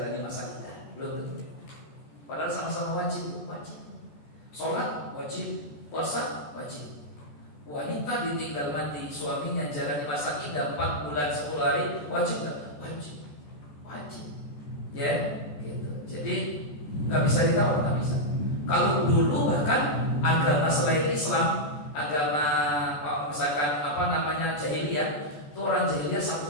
masa iddah, belum tentu. Padahal sama-sama wajib. Sholat wajib, puasa wajib. Wanita ditinggal mati suaminya jalani masa iddah 4 bulan 10 hari, wajib nggak? Wajib. Ya, gitu. Jadi nggak bisa ditawar, nggak bisa. Kalau dulu bahkan agama selain Islam, agama misalkan jahiliyah, itu orang jahiliyah 1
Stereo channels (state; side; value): late; right; 14 ms